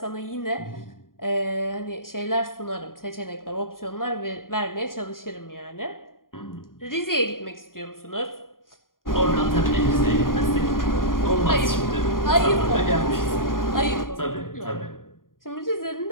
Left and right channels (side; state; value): right; late; 0.91 ms